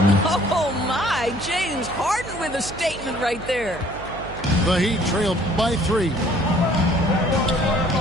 Oh, my. James Harden with a statement right there. The Heat trailed by 3.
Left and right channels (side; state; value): right; noise; hum, 14 dB below the sound